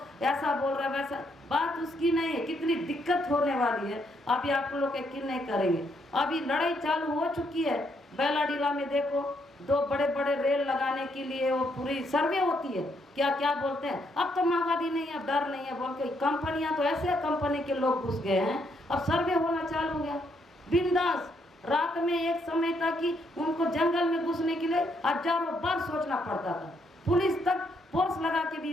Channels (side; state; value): both; normal; correlation 0.74